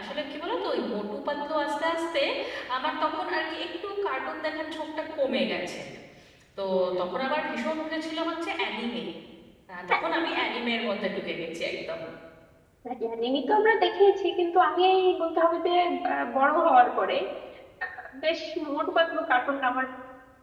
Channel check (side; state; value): both; identical; correlation 1.00